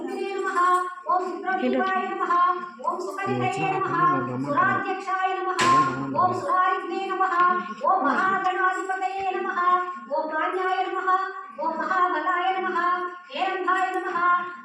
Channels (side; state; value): both; identical; correlation 1.00